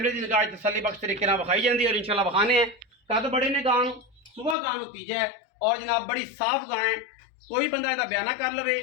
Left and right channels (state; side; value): drops out; right; at 4.5 s